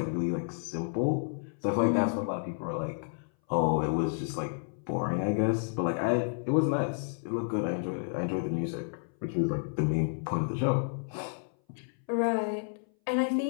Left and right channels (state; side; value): silent; right; 57 dB below the other